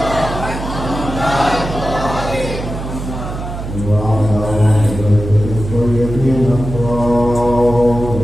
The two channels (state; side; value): noise; right; hum, 7 dB below the sound